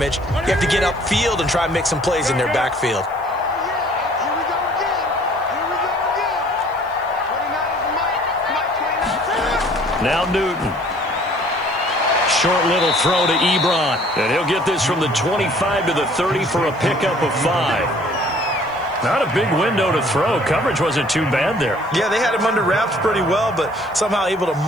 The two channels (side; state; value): left; noise; hiss, 30 dB below the sound